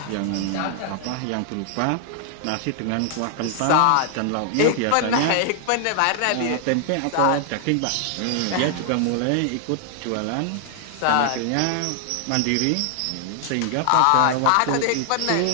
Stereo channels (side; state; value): both; different; correlation 0.00